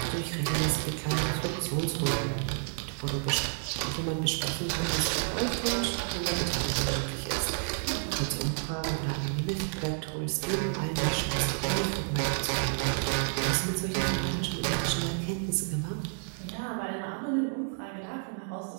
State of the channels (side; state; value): left; silent; 58 dB below the other